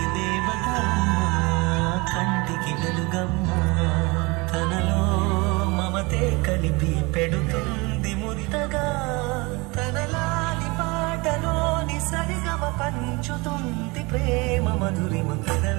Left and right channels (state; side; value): quieter; left; 25.8 dB